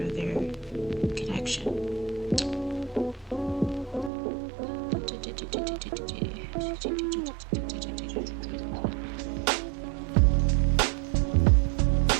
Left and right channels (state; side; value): drops out; left; at 4.1 s